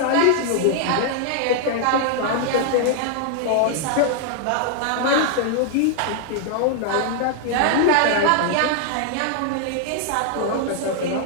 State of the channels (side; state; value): both; different; correlation 0.00